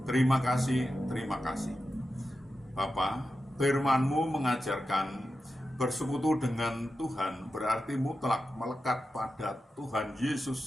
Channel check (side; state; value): both; normal; correlation 0.91